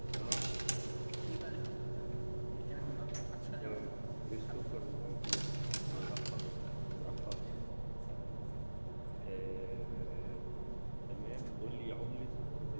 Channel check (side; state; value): both; inverted; correlation -1.00